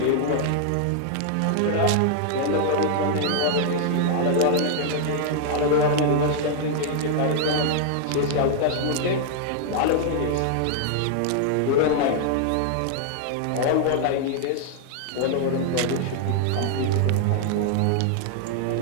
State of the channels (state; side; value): different; both; correlation 0.00